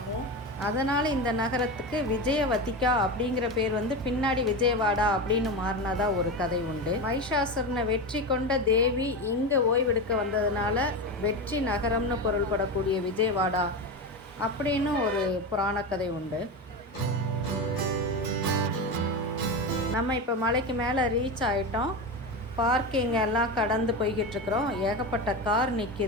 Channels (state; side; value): normal; both; correlation 0.20